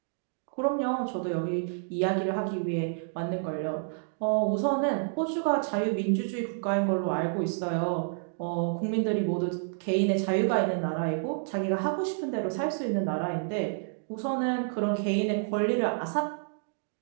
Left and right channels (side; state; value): left; silent; digital silence